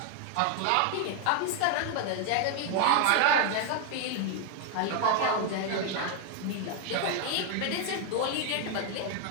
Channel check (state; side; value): different; both; correlation 0.01